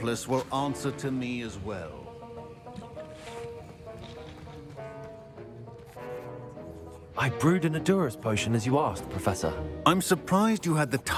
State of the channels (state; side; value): identical; both; correlation 1.00